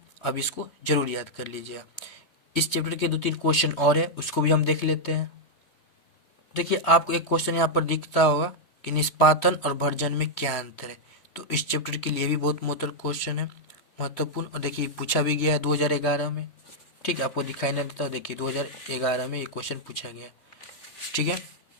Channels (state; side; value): late; right; 3.1 ms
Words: अब इसको जरूर याद कर लीजिएगा। इस चैप्टर के 2-3 क्वेश्चन और है, उसको भी हम देख लेते हैं। देखिए, आपको एक क्वेश्चन यहाँ पर दिखता होगा कि निष्पादन और भर्जन में क्या अंतर है, तो इस चैप्टर के लिए भी बहुत महत्वपूर्ण क्वेश्चन है, महत्वपूर्ण। और देखिए पूछा भी गया है 2011 में। ठीक है, आपको दिखाई नहीं देता, देखिए 2011 में ये क्वेश्चन पूछा गया। ठीक है,